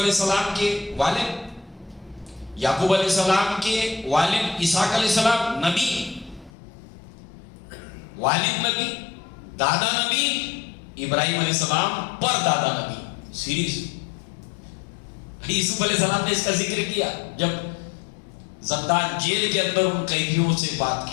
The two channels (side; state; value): right; drops out; at 6.5 s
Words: السلام کے والد، یعقوب علیہ السلام کے والد اسحاق علیہ السلام نبی، والد نبی، دادا نبی، ابراہیم علیہ السلام پر دادا نبی، سیریز۔ یوسف علیہ السلام نے اس کا ذکر کیا جب زندان جیل کے اندر ان قیدیوں سے بات